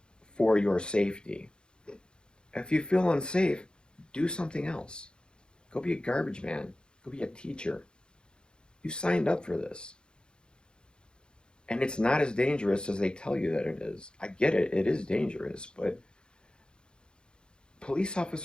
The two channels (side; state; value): right; late; 0.050 ms